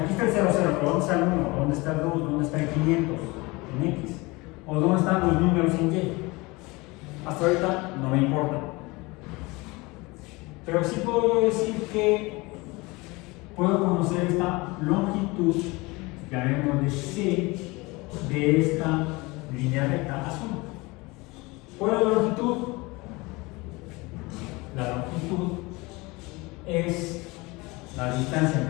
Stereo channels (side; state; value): right; quieter; 24.0 dB